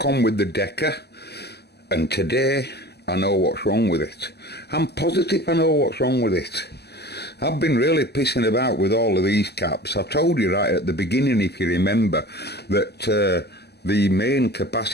on with the Decca, and today I know what's wrong with it. I'm positive I know what's wrong with it. I've been really pissing about with all of these caps. I told you right at the beginning, if you remember, that the main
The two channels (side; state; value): right; late; 0.48 ms